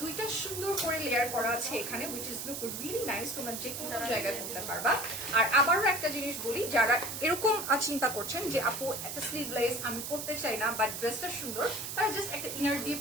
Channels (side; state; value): right; noise; hiss, 6 dB below the sound